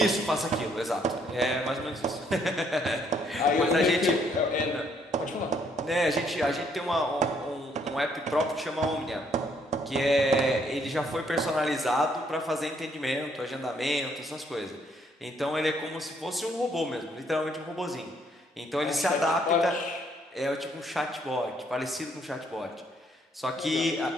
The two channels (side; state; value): both; normal; correlation 0.68